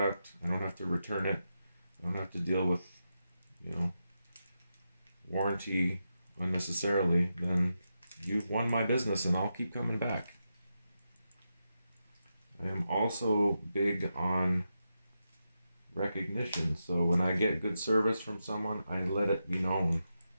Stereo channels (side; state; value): both; inverted; correlation -0.87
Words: I don't have to return it. I don't have to deal with, warranty unnecessarily, then you've won my business and I'll keep coming back. I am also big on recognition. So when I get good service from someone, I let it be known.